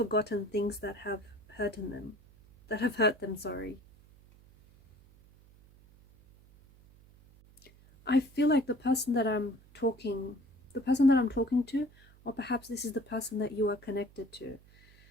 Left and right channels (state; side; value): noise; right; hum, 26 dB below the sound